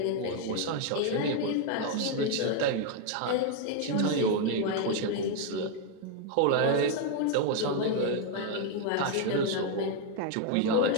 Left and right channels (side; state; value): both; different; correlation 0.01